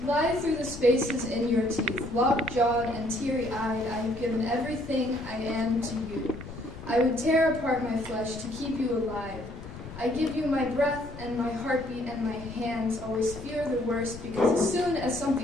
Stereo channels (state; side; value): noise; left; rumble, 13 dB below the sound